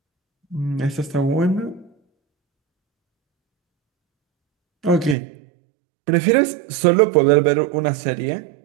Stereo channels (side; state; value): left; drops out; at 5.2 s